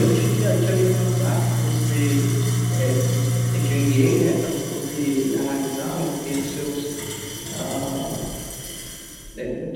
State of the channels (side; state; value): both; identical; correlation 1.00